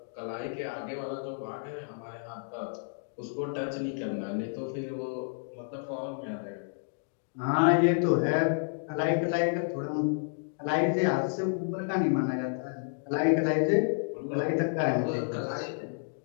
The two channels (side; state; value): right; silent; digital silence